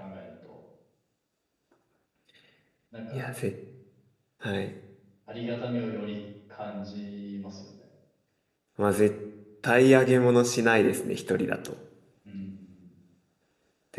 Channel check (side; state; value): both; identical; correlation 1.00